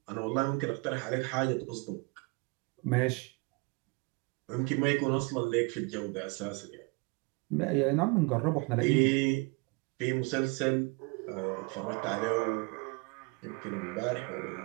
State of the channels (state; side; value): quieter; left; 28.6 dB